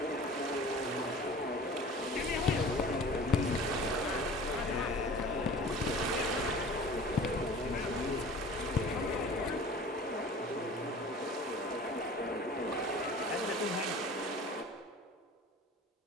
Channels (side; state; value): both; normal; correlation 0.41